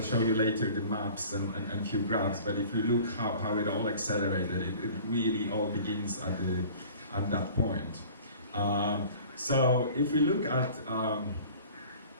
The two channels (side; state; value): both; inverted; correlation -0.46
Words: show you later the maps and few graphs, but if you look how it all accelerated, it really all begins at that point. So if we look at, so I'm